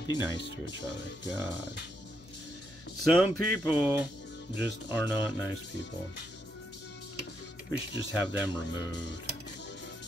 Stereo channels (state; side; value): noise; left; hum, 22 dB below the sound